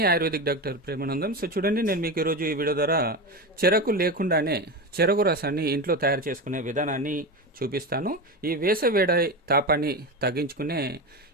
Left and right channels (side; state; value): both; normal; correlation 0.21